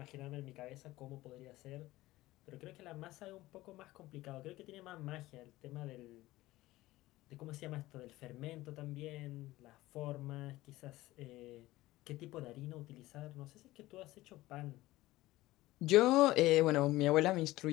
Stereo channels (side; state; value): right; quieter; 17.6 dB